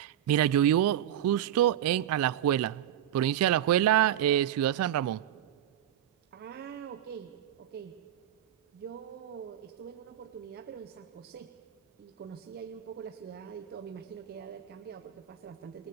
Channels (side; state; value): left; quieter; 11.1 dB